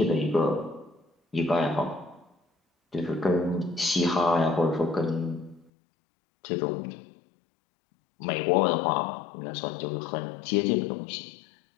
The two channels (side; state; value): right; drops out; at 5.7 s